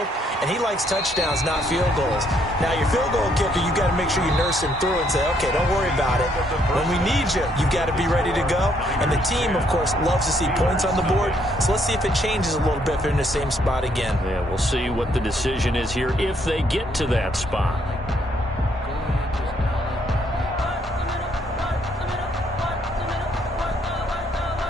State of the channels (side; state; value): both; normal; correlation 0.70